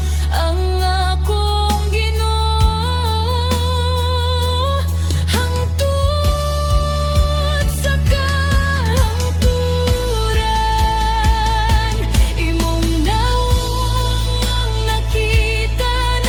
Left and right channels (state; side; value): identical; both; correlation 1.00